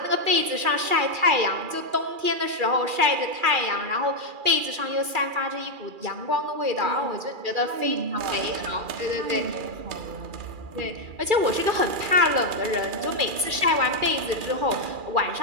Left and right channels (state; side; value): late; left; 2.4 ms